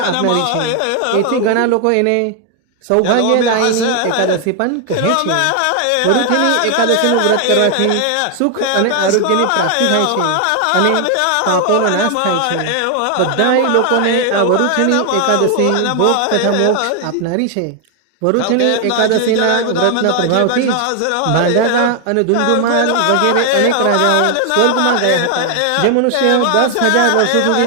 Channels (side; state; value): both; different; correlation 0.00